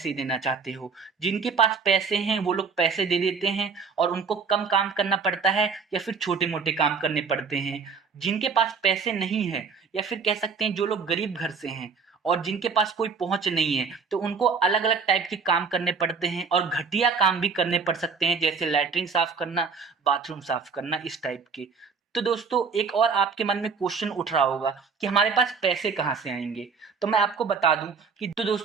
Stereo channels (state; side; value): quieter; left; 5.3 dB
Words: देना चाहते हो। जिनके पास पैसे हैं वो लोग पैसे दे देते हैं और उनको कम काम करना पड़ता है या फिर छोटे मोटे काम करने पड़ते हैं। जिनके पास पैसे नहीं है या फिर कह सकते हैं जो लोग गरीब घर से हैं और जिनके पास कोई पहुंच नहीं है तो उनको अलग अलग टाइप के काम करने पड़ते हैं और घटिया काम भी करने पड़ सकते हैं, जैसे लैट्रिन साफ करना, बाथरूम साफ करना, इस टाइप के। तो दोस्तों एक और आपके मन में क्वेश्चन उठ रहा होगा कि हमारे पास पैसे कहाँ से आएंगे। तो मैं आपको बता दूं कि तो